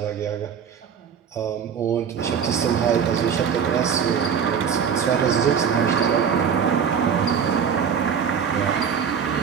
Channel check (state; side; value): quieter; left; 7.3 dB